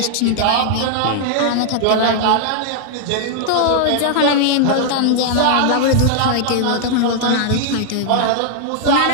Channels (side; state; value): both; different; correlation -0.01